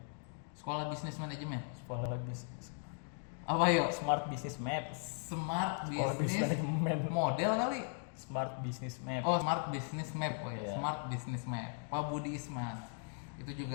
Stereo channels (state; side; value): silent; right; 52 dB below the other